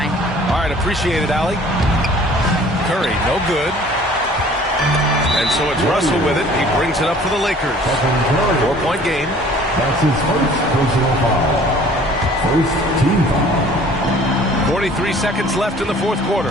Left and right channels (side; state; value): both; normal; correlation 0.51